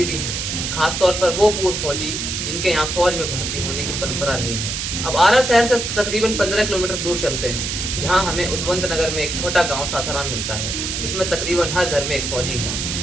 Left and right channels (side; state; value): right; noise; hiss, 3 dB below the sound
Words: भी हैं, खासतौर पर वो पूर्व फौजी जिनके यहाँ फौज में भर्ती होने की परंपरा रही है। अब आरा शहर से तकरीबन 15 किलोमीटर दूर चलते हैं, जहाँ हमें उद्वंत नगर में एक छोटा गांव सासाराम मिलता है, जिसमें तकरीबन हर घर में एक फौजी